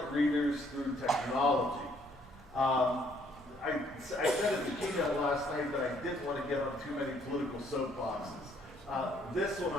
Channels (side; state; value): both; normal; correlation 0.66